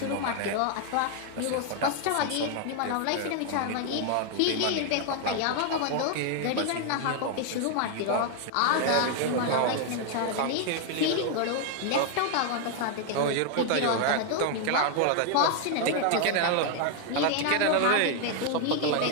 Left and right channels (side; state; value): both; different; correlation 0.00